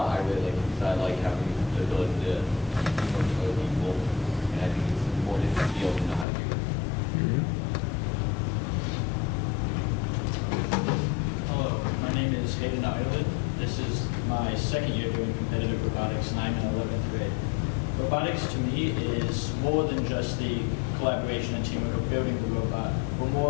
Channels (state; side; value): drops out; right; at 6.2 s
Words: I really like it, because I like having the ability to teamwork with other people, and I think it's important to be able to know how to do it. Hello, my name is Hayden Ireland. This is my second year doing competitive robotics, and I'm in 11th grade. Robotics to me is more than just the collaboration and teamwork of building the robot. We're more